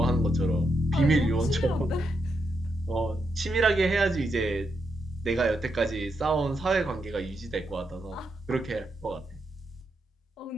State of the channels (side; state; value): both; normal; correlation 0.82